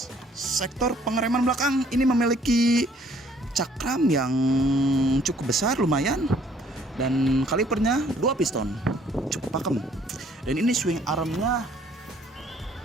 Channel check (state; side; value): normal; both; correlation 0.61